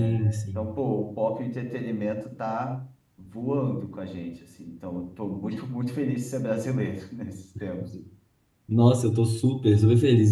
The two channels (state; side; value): identical; both; correlation 1.00